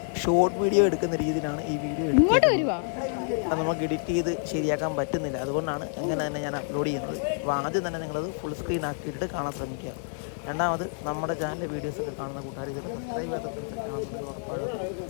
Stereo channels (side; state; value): right; silent; 59 dB below the other